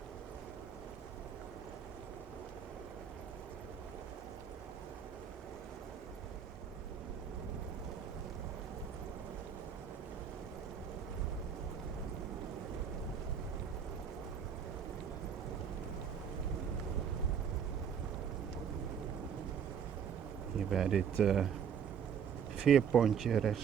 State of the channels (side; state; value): left; quieter; 7.6 dB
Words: Hier bij dit veerpontje